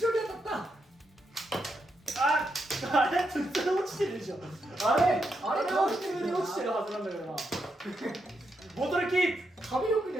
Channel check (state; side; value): normal; both; correlation 0.82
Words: 当たった。あれ普通に落ちてるでしょ。あれ普通に落ちてるはずなんだけどな。ボトルキープ。壁よく